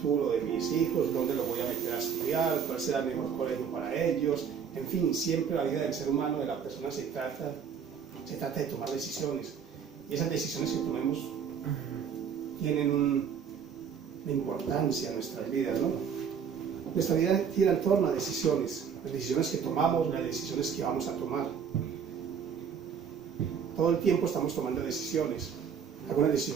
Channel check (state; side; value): quieter; left; 7.2 dB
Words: de mis hijos? ¿Dónde los voy a meter a estudiar? ¿Cuál será el mejor colegio para ellos? En fin, siempre la vida del ser humano, de la persona, se trata de tomar decisiones. Y esas decisiones que tomemos tienen una importancia en nuestras vidas, ¿no? Nuestra vida gira en torno a decisiones. Las decisiones que tomamos, las decisiones que vamos a tomar. Todo el tiempo estamos tomando decisiones. Algunas